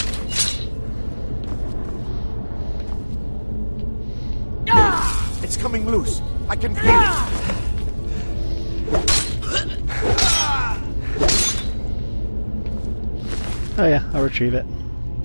Ah! It's coming loose. I can feel it. Ah! Oh yeah, I'll retrieve it.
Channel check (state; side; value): inverted; both; correlation -1.00